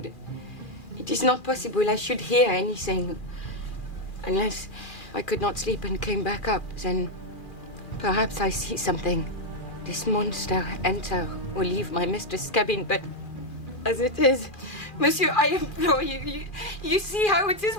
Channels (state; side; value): late; right; 2.4 ms